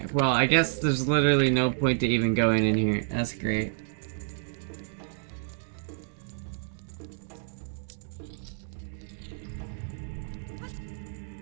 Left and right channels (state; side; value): silent; left; digital silence